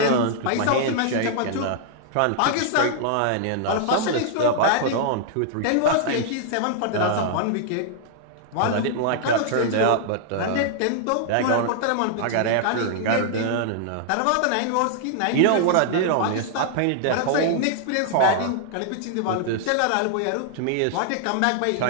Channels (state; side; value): different; both; correlation -0.01